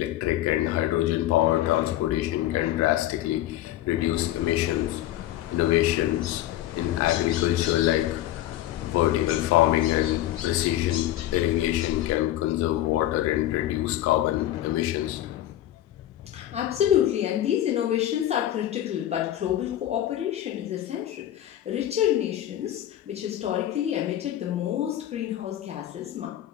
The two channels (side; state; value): right; quieter; 13.5 dB